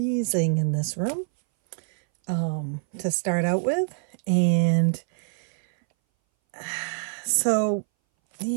in this room to start out with. And so,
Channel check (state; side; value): silent; left; 60 dB below the other